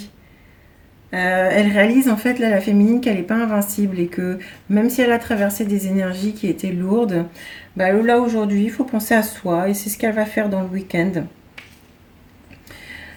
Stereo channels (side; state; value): both; identical; correlation 1.00